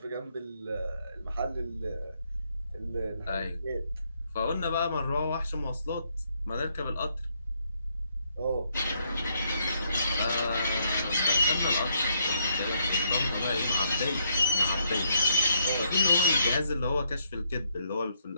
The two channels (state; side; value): inverted; both; correlation -0.74